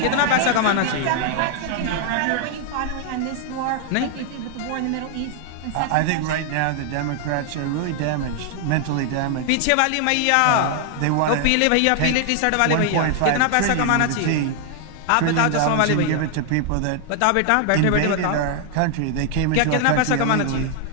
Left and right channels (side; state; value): both; different; correlation 0.00